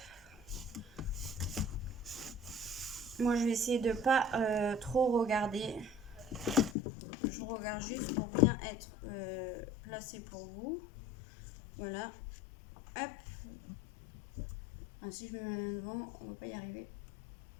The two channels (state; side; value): drops out; right; at 6.8 s